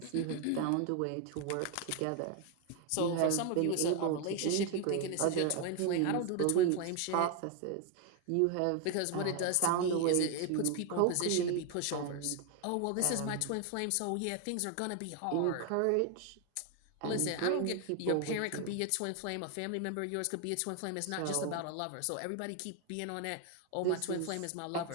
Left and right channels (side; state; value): both; different; correlation 0.01